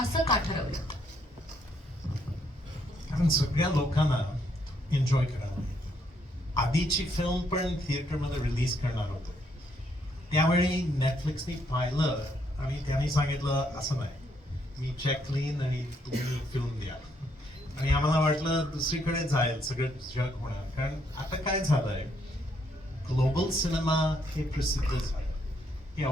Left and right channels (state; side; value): normal; both; correlation 0.72